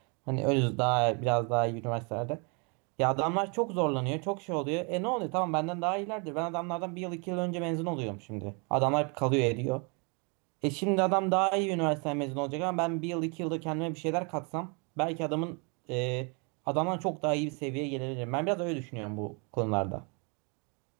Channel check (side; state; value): left; quieter; 33.7 dB